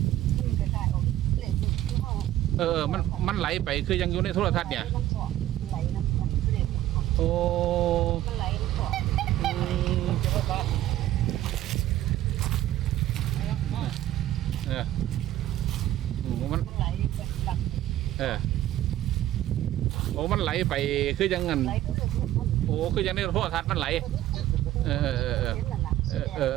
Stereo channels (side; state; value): left; quieter; 13.7 dB